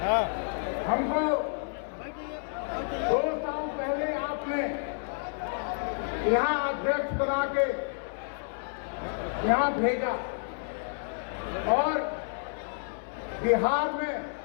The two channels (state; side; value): silent; right; digital silence